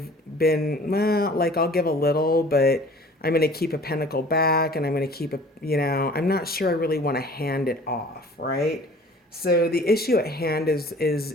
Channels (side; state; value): both; normal; correlation 0.48